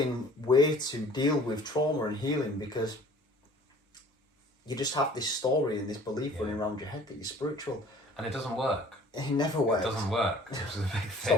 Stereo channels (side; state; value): both; normal; correlation 0.51